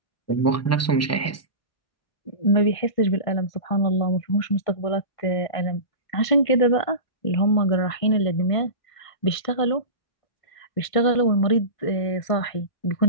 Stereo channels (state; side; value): late; right; 1.5 ms